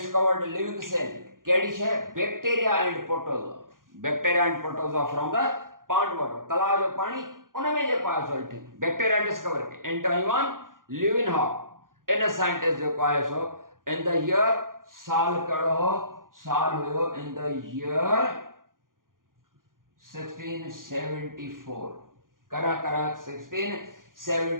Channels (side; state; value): left; late; 0.90 ms